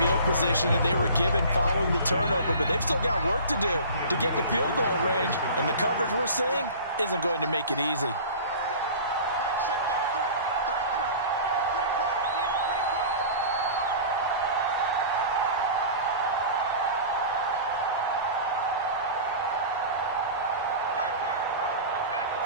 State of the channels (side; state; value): both; inverted; correlation -0.38